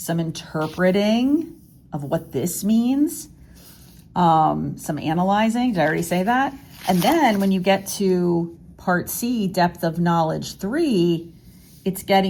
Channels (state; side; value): identical; both; correlation 1.00